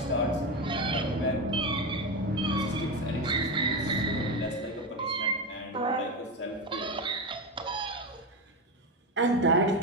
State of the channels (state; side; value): normal; both; correlation 0.16